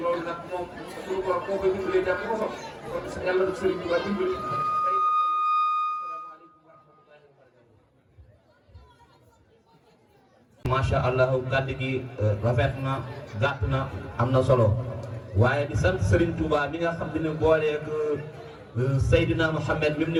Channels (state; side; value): identical; both; correlation 1.00